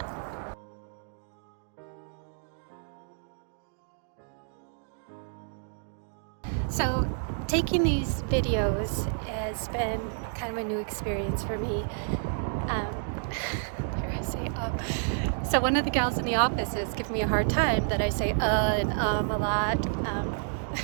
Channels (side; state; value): left; silent; digital silence